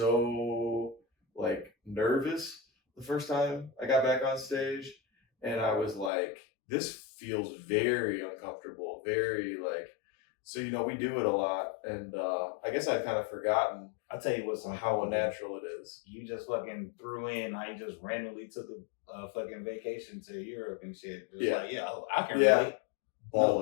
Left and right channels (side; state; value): right; drops out; at 6.1 s